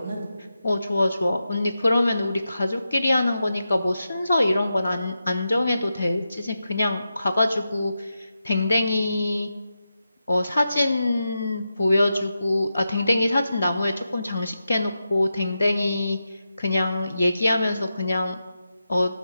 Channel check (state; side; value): inverted; both; correlation -0.89